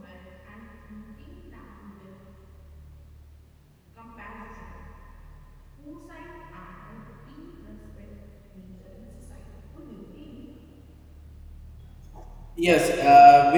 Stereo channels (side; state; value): both; identical; correlation 1.00